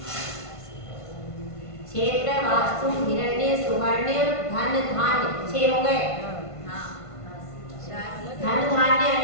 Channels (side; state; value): right; late; 1.5 ms